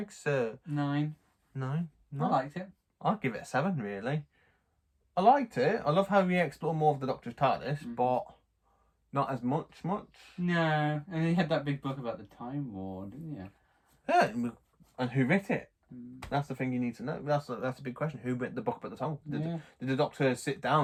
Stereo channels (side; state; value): both; identical; correlation 1.00